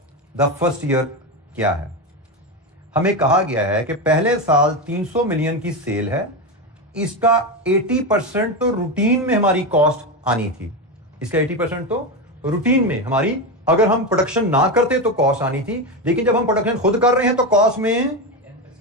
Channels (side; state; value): both; normal; correlation 0.15